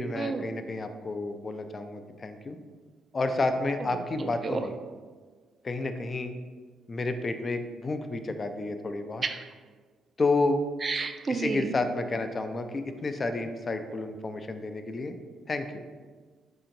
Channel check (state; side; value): normal; both; correlation 0.86